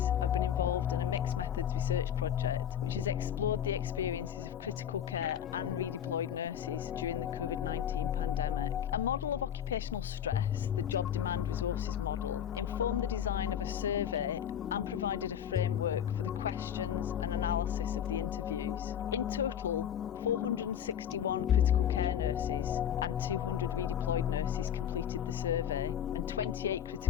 I've been involved in a mixed methods research project which has explored the experiences of critical care and redeployed nurses during the COVID-19 pandemic. A model of occupational stress, the job demand resources model, informed the design of a survey and provided a framework for the questions and analysis of the interviews. In total, 461 critical care nurses and 200 redeployed nurses completed the survey, and 28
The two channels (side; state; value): right; quieter; 9.4 dB